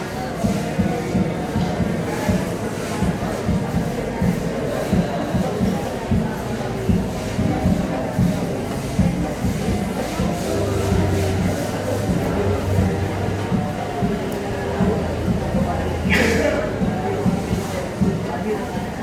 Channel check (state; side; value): identical; both; correlation 1.00